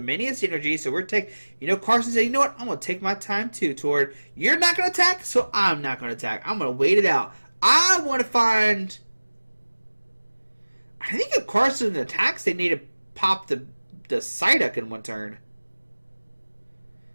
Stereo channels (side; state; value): both; inverted; correlation -1.00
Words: Energy. So we're taking. You know, Carson said, you know what? I'm going to take my time too, Tord. You're not going to attack, so I'm not going to attack. I'm going to wait it out. I want to find. I think if Carson attacks, they need to pop the Psyduck in one turn.